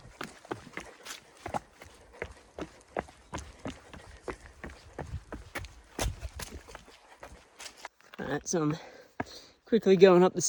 All right, so I'm quickly going up the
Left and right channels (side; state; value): both; identical; correlation 1.00